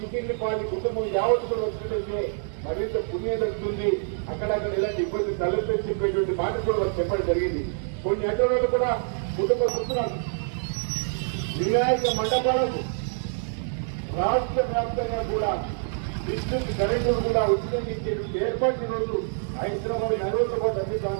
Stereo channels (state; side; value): silent; left; digital silence